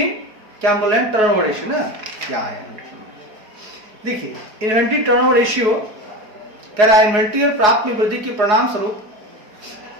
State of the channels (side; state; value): left; late; 4.7 ms